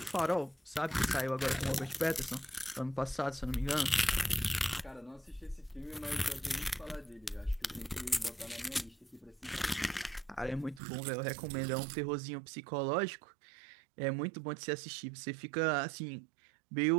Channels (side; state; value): left; drops out; at 10.8 s